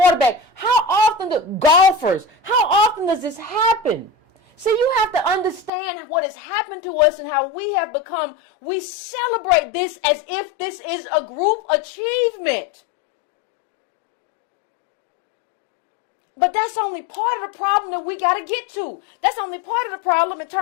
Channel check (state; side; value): drops out; right; at 5.7 s